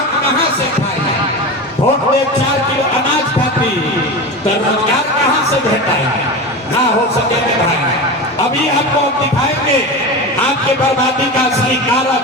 कहाँ से खाइए? वोट दे 4 किलो अनाज खाती तो रोजगार कहाँ से भेटाएगा? ना हो सके तो भाई अभी आपको दिखाएंगे आपके बर्बादी का असली कारण,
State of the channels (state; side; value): normal; both; correlation 0.25